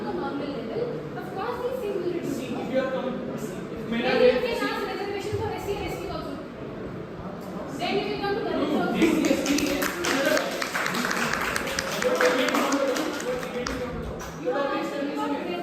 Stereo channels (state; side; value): identical; both; correlation 1.00